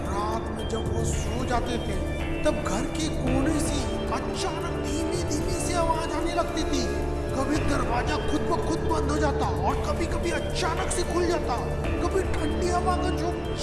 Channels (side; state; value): both; identical; correlation 1.00